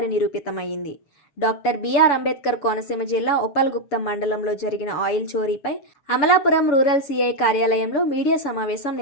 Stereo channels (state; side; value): late; right; 7.0 ms